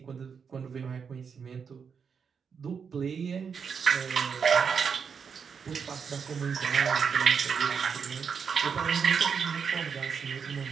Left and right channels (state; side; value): quieter; left; 6.4 dB